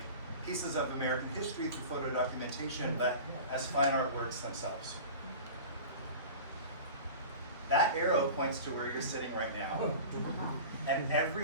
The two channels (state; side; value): inverted; both; correlation -0.36